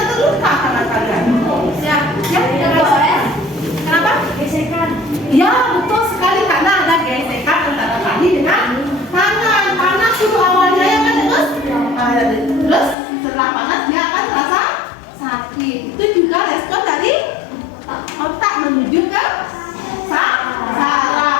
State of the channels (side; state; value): right; drops out; at 13.0 s